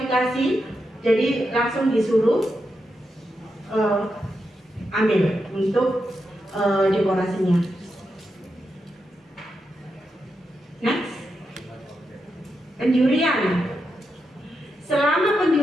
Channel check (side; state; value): both; normal; correlation 0.86